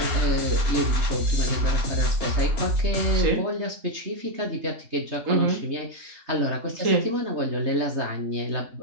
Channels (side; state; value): left; late; 3.2 ms